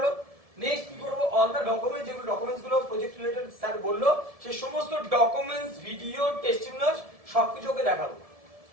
নেক্সট কি করবো, অল দ্য ডকুমেন্ট, যেগুলো ডকুমেন্টস গুলো প্রজেক্ট রিলেটেড স্যার বললো, সেই সমস্ত ডকুমেন্টস, ভিডিও, টেস্টিমোনিয়ালস সবকিছু ওকে দেখাবো।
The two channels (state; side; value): late; left; 1.7 ms